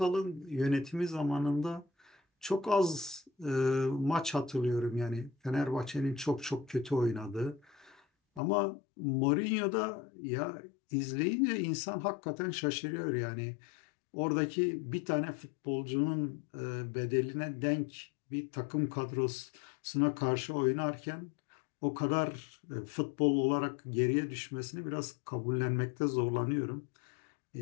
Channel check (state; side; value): drops out; right; at 8.4 s